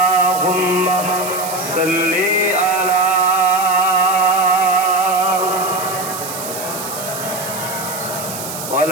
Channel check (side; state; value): right; noise; hiss, 9 dB below the sound